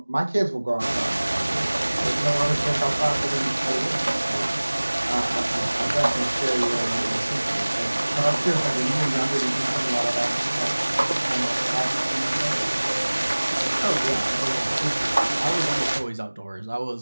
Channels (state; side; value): inverted; both; correlation -1.00